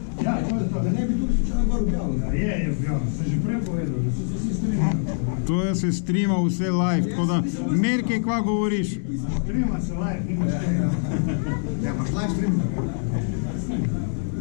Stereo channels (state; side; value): silent; right; digital silence